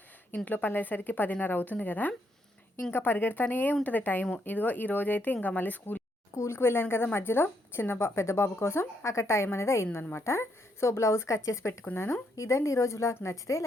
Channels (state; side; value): normal; both; correlation 0.76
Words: ఇంట్లో పనులయ్యేసరికి 10:30 అవుతుంది కదా. ఇంకా పరిగెడతానే ఉంటుంది టైము. ఇదిగో ఈరోజైతే ఇంకా మళ్ళీ స్కూల్కి వెళ్ళాను కదా మధ్యలో పెద్ద బాబు కోసం అక్కడ టైం అనేది అయిందనమాట. సో బ్లౌజ్ కట్ చేసి పెట్టుకున్నాను. ఇదండి ఈరోజు వ్లాగ్. నచ్చితే